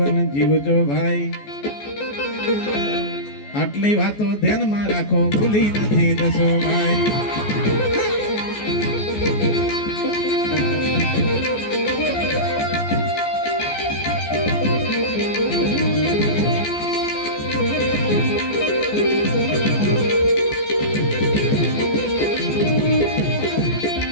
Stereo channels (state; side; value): late; right; 14 ms